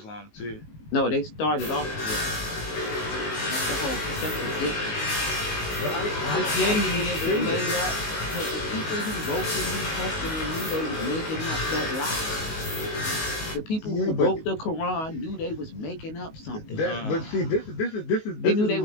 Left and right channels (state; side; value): late; right; 19 ms